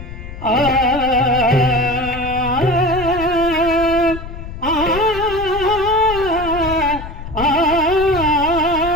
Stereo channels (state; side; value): noise; left; rumble, 11 dB below the sound